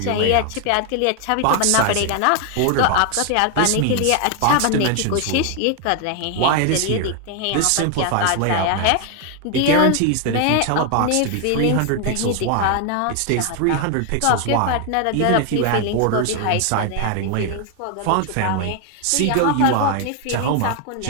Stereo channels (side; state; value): both; different; correlation 0.01